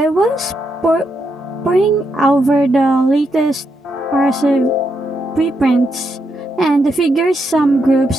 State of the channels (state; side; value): normal; both; correlation 0.80